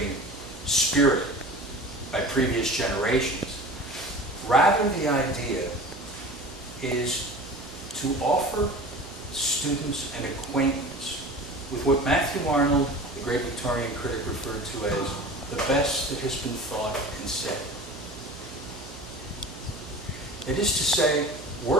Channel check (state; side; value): noise; right; hum, 18 dB below the sound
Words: spirit by previous generations. Rather, the idea is to offer students an acquaintance with what Matthew Arnold, the great Victorian critic, referred to as the best that has been thought and said. That is to say,